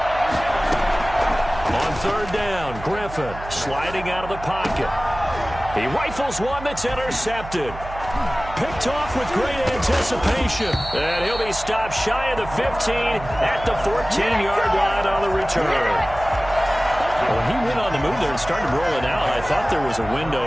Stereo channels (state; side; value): noise; right; hum, 13 dB below the sound